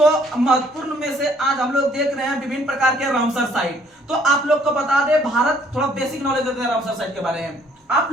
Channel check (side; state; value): both; normal; correlation 0.62